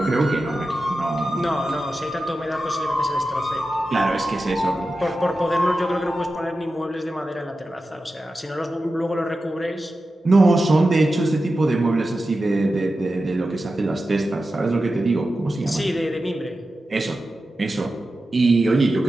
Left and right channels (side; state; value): both; normal; correlation 0.92